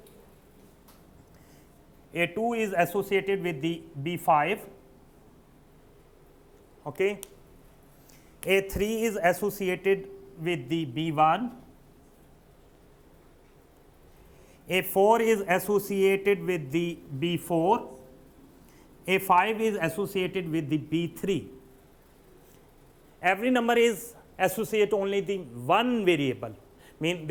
A2 is associated with the B5, okay, A3 is associated with the B1, A4 is associated with the B4, A5 is associated with the B3. Every number is associated only the one variable, mean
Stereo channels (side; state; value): both; identical; correlation 1.00